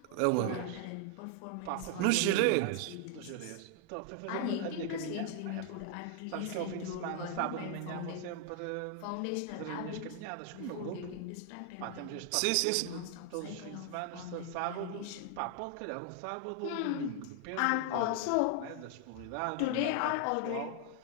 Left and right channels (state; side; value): different; both; correlation 0.00